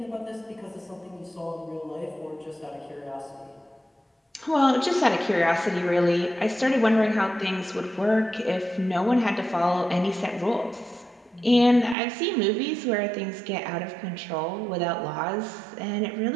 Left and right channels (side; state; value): left; drops out; at 12.0 s